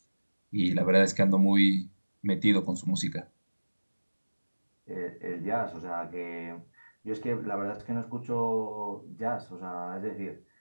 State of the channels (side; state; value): both; inverted; correlation -1.00